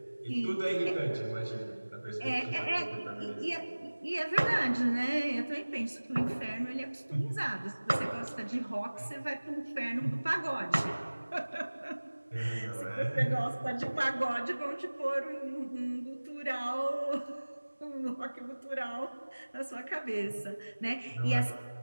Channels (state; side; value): inverted; both; correlation -1.00